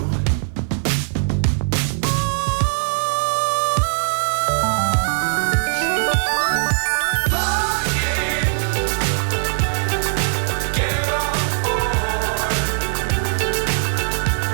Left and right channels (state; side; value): silent; left; 66 dB below the other